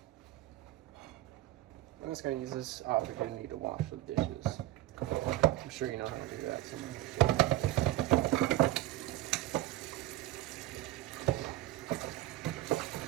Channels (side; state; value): left; quieter; 15.8 dB